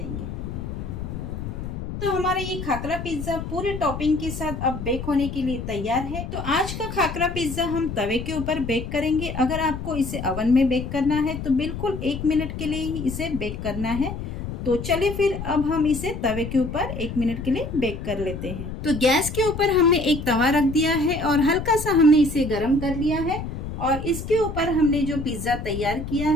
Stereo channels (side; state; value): left; noise; rumble, 7 dB below the sound